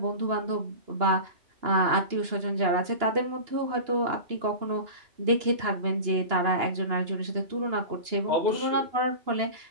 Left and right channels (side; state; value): left; late; 2.9 ms